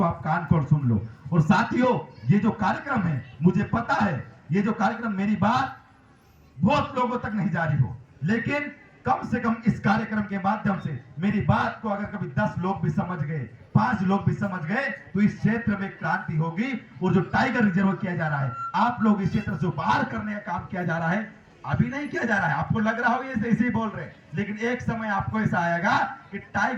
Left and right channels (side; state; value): both; identical; correlation 1.00